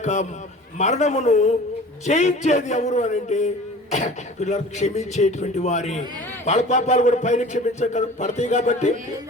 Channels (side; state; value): both; normal; correlation 0.42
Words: మరణమును జయించేది ఎవరు అని అంటే పిల్లలు క్షమించేటువంటి వారి. వాళ్ళ పాపాలు కూడా పైన పడతాయి కాబట్టి